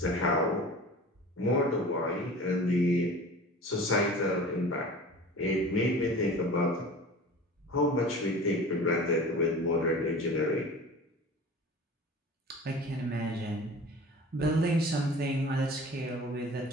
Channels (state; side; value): normal; both; correlation 0.39